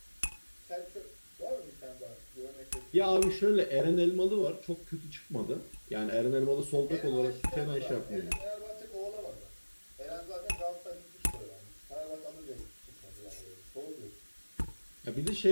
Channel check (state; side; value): inverted; both; correlation -1.00